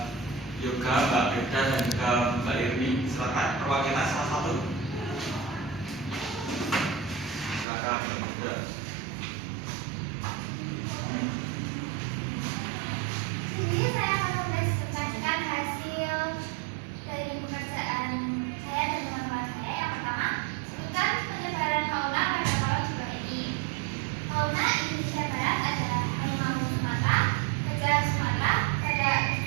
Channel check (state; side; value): drops out; left; at 7.7 s